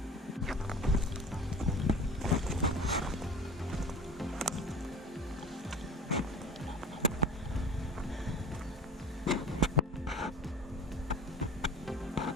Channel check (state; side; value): normal; both; correlation 0.38